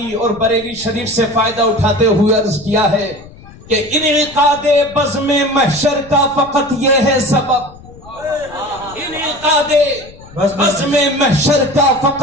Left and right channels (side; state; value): left; noise; rumble, 20 dB below the sound